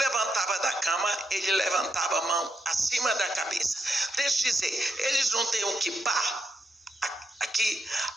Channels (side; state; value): both; normal; correlation 0.82